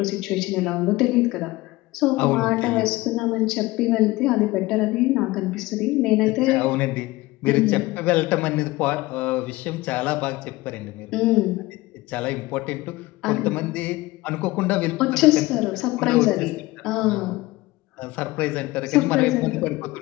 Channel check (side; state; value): right; quieter; 19.8 dB